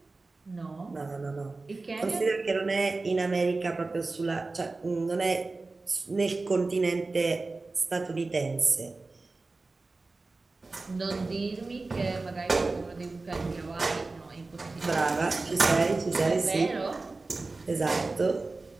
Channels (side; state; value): left; quieter; 3.5 dB